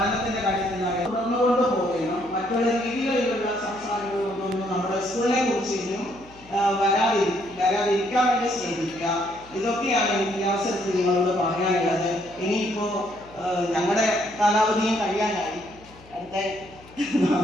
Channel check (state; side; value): noise; left; hum, 24 dB below the sound